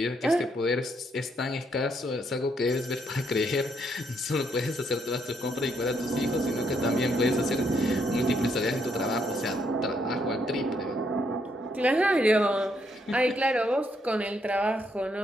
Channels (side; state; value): both; normal; correlation 0.74